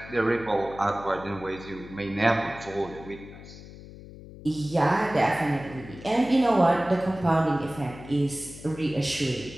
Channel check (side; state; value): left; noise; hum, 16 dB below the sound